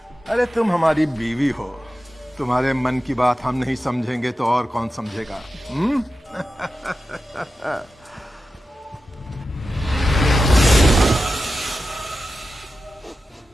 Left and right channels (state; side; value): normal; both; correlation 0.92